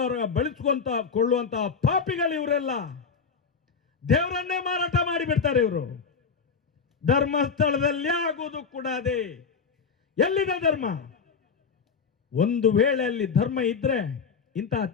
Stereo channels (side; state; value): right; quieter; 5.6 dB